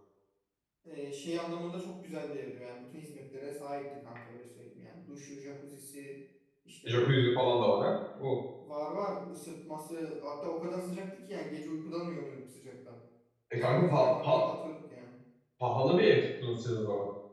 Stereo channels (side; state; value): both; identical; correlation 1.00